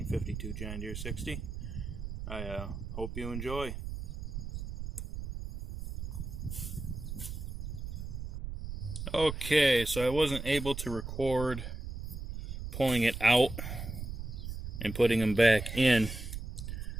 John Deere 60. I hope you enjoy. Okay, so I wasn't able to record pulling it out and putting them back in,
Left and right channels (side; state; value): right; noise; rumble, 7 dB below the sound